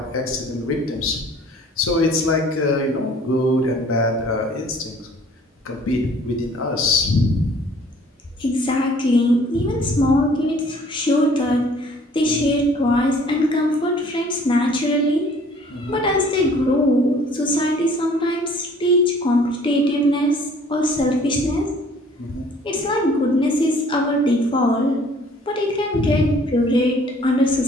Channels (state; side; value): normal; both; correlation 0.55